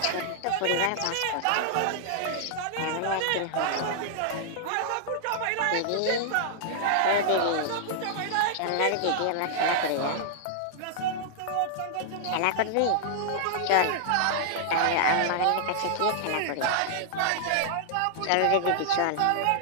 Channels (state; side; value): different; both; correlation -0.01